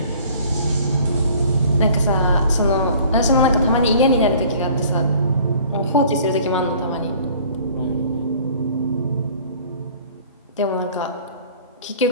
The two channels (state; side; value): inverted; both; correlation -0.51